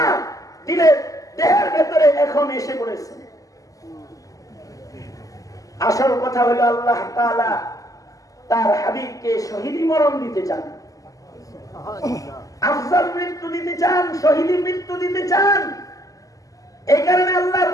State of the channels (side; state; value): right; late; 0.17 ms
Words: দিলের দেহের ভেতরে এখন এসে পড়েছে। আসল কথা হলো আল্লাহ তাআলা তার হাবিবকে শহীদি মরণ দিতে চান, আফজাল মৃত্যু দিতে চান, শহীদি মৃত্যু দিতে চান। এই কারণে আল্লাহর